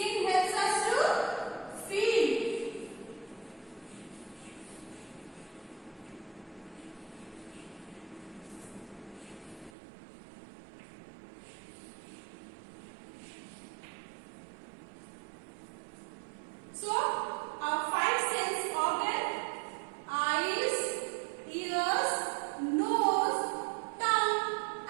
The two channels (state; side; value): drops out; left; at 9.7 s